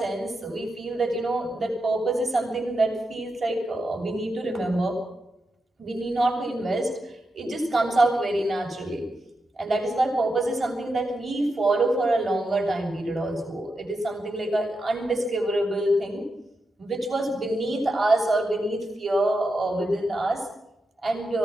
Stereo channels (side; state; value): both; normal; correlation 0.87